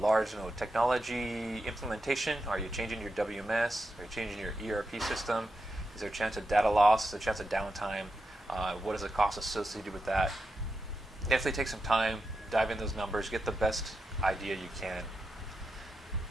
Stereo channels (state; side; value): normal; both; correlation 0.88